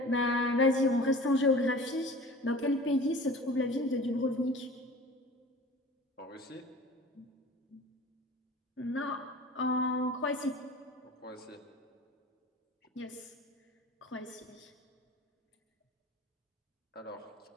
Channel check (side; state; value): both; normal; correlation 0.41